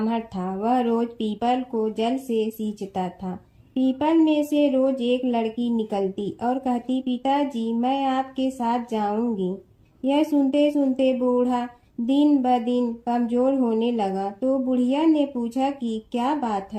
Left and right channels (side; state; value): both; identical; correlation 1.00